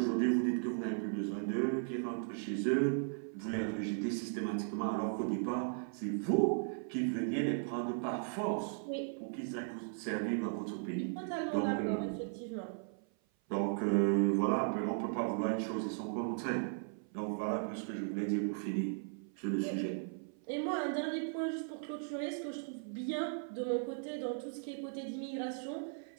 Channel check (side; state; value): left; silent; 53 dB below the other